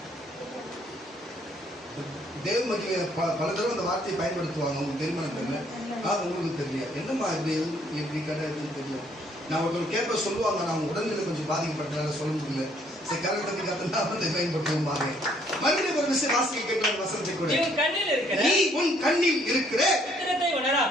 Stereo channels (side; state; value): both; normal; correlation 0.65